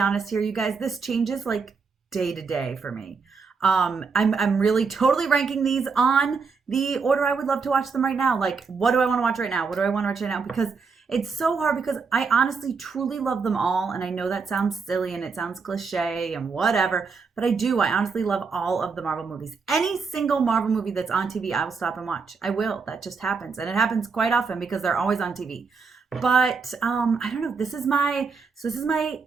here, you guys, this changes like day to day for me. I'm really totally ranking these on the order I would love to watch them right now. Like, what do I want to watch right now? What do I want to watch right now? Because it's so hard because I honestly truly love them all. And I know that sounds silly and it sounds cliche and whatever, but I do. I honestly love all of the Marvel movies. Any single Marvel movie that's on TV, I will stop and watch. I will. That just happens. And it happens quite often because they're always on TV. But I don't know. This is my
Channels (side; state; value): left; quieter; 5.0 dB